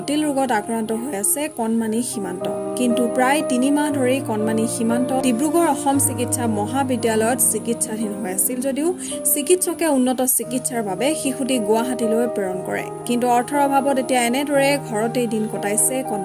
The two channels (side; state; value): both; identical; correlation 1.00